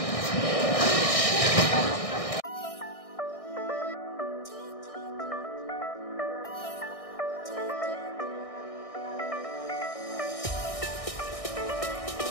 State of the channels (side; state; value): right; late; 1.6 ms